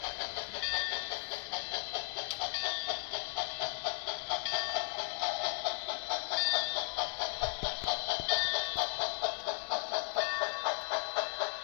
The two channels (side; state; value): right; silent; 54 dB below the other